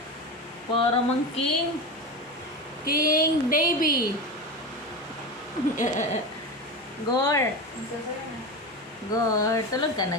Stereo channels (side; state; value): both; normal; correlation 0.23